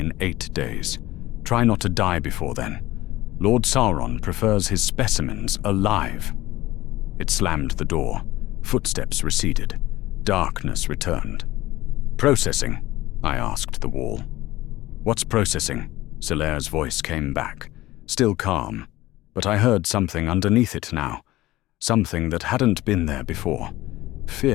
8 days. Try not to die before then. Lord Sauron prefers his specimens alive. It slammed the door. Footsteps receded. Darkness returned. Processing, I asked the wall. What's processing? Silera's voice came back, still calm, but I heard something underneath it now. Something that hadn't been there before.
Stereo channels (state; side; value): quieter; right; 17.2 dB